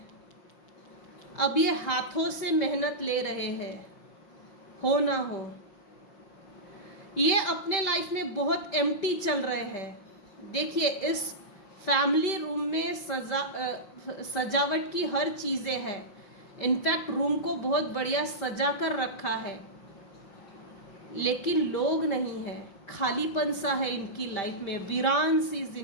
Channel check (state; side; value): late; right; 5.2 ms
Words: अब ये हाथों से मेहनत ले रहे हैं, हो ना हो। ये अपने लाइफ में बहुत एम्प्टी चल रहे हैं। देखिए, इस फैमिली रूम में सजावट की हर चीज़ें है। इनफैक्ट रूम को बहुत बढ़िया सजा कर रखा है, लेकिन लोग नहीं है, खालीपन सा है इनकी लाइफ में, वीरान सी